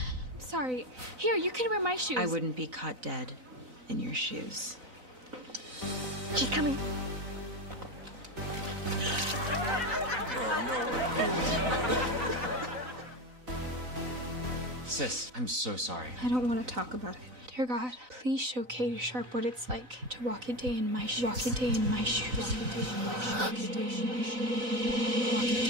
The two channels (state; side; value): late; left; 4.0 ms